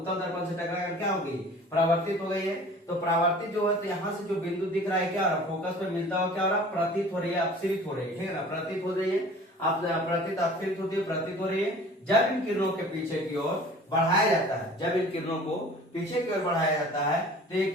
दर्पण से टकरा कर क्या हो गई, परावर्तित हो गई है। तो परावर्तित जो है, तो यहाँ से जो बिंदु दिख रहा है क्या हो रहा है, फोकस पे मिलता हुआ क्या हो रहा है, प्रतीत हो रही है, अपसरित हो रही है। ठीक है ना, प्रतीत हो रही है, प्रतीत अपसरित होती है, प्रतीत हो रही है। जब इन किरणों के पीछे की ओर बढ़ाया जाता है, जब इन किरणों को पीछे की ओर बढ़ाया जाता है, तो ये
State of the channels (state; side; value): normal; both; correlation 0.46